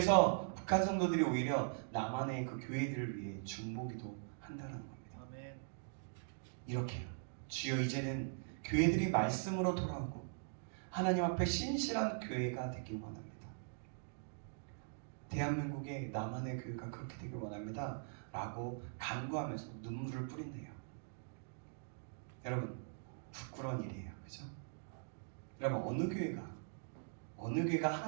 북한 성도들이 오히려 남한의 그 교회들을 위해 중보기도 한다는 겁니다. 아멘. 이렇게요. 주여 이제는 교회들이 말씀으로 돌아오고 하나님 앞에 신실한 교회가 되길 원합니다. 대한민국의 남한의 교회가 그렇게 되길 원합니다. 라고 간구하면서 눈물을 뿌린대요. 여러분 부끄러운 일이에요. 그죠? 여러분 어느 교회가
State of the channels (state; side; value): silent; left; digital silence